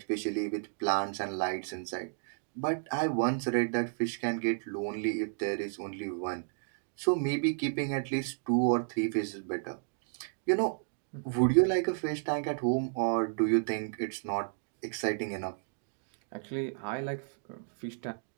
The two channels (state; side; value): silent; left; digital silence